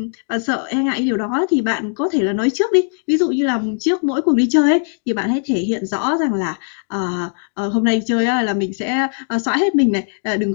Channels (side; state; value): right; silent; 65 dB below the other